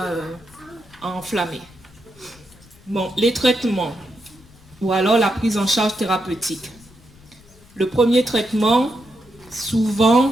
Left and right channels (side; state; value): left; noise; rumble, 25 dB below the sound